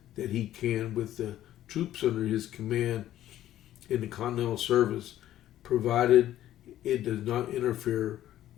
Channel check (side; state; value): right; quieter; 12.8 dB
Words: that he can with the troops under his command in the Continental Service, provided it does not interfere